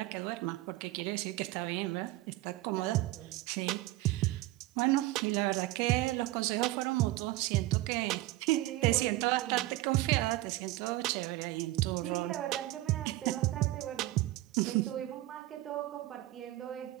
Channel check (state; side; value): quieter; left; 17.5 dB